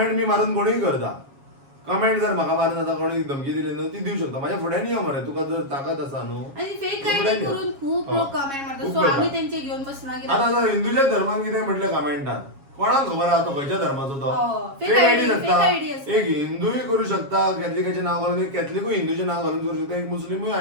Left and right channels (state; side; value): late; left; 7.3 ms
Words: बी मारून कोणूय करता. कमेंट जर म्हाका मारून जाता कोणी धमकी दिली न्हू ती दिवं शकता. म्हाज्या फुड्यान यो मरे, तुका जर ताकद आसा न्हू. आणि फेक फुड्यान आयडी यो. करून खूप लोक कमेंट मारतात. खूप सो करता. आम्ही त्यांचे घेऊन बसना कित्याक आता जर हिंदूच्या धर्मान कितें म्हटलें कमेंटान कोणाक खबर आहा तो खंयच्या धर्माचो तो. फेक फेक आयडी आयडी आसता. असता. एक हिंदूय करू शकता, कॅथलिकाचें नाव घालून, एक कॅथलिकूय हिंदूचें नाव घालून करू शकता, एक मुस्लिमूय